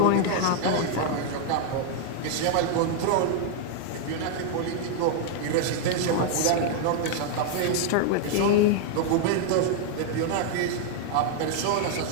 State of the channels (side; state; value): both; different; correlation 0.00